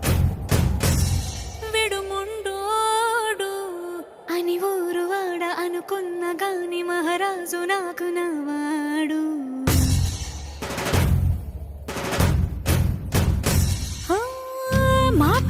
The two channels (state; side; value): identical; both; correlation 1.00